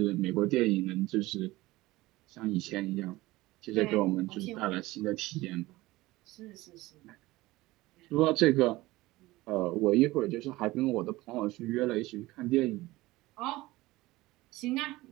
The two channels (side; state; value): left; quieter; 19.1 dB